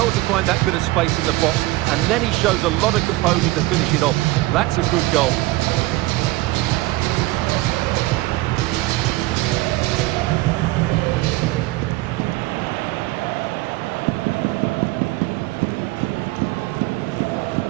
to find that bit of space in the box, and then he shows a lot of composure to finish it off. That's a good goal.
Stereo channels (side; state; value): left; quieter; 19.4 dB